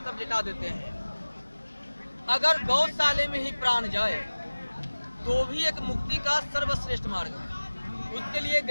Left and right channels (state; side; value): inverted; both; correlation -1.00